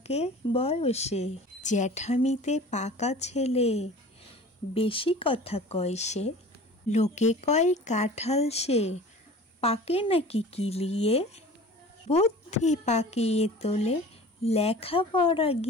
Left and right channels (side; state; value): both; normal; correlation 0.41